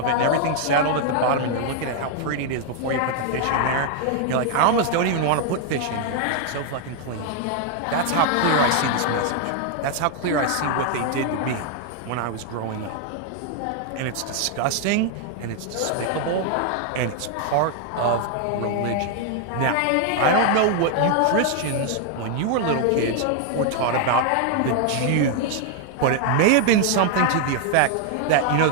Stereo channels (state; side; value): different; both; correlation 0.00